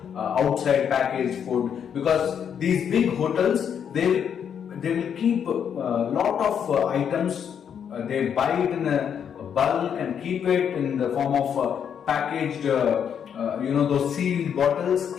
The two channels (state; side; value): quieter; right; 8.1 dB